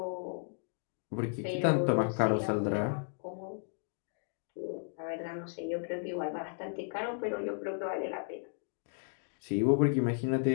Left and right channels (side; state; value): right; silent; digital silence